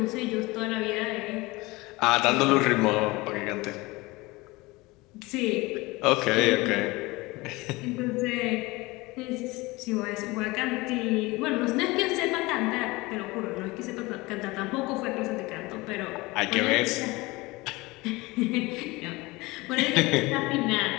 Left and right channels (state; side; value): quieter; right; 22.3 dB